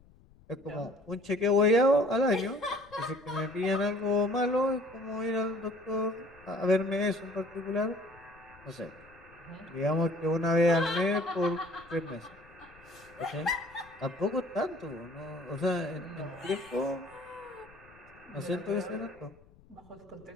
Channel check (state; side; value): noise; left; rumble, 26 dB below the sound